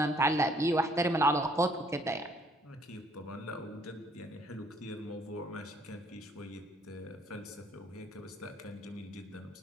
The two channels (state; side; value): normal; both; correlation 0.63